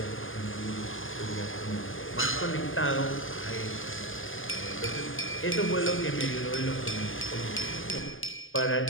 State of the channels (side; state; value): right; late; 0.58 ms